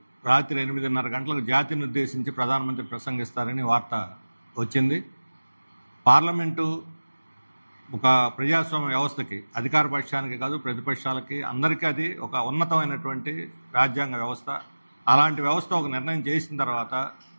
రాత్రి 8:30 గంటలకు జాతిని ఉద్దేశించి ప్రధానమంత్రి ప్రసంగిస్తారని వార్త వచ్చింది. పార్లమెంటు ఒక ప్రజాస్వామ్య వ్యవస్థకి, అధికార పక్షానికి కాదు ప్రతిపక్షాలకి అందరికీ అది ఒక ఉన్నతమైనటువంటి రాజ్యాంగ వ్యవస్థ. అలాంటి వ్యవస్థ ఒక నిర్ణయం చేసిన తర్వాత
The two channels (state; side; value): inverted; both; correlation -1.00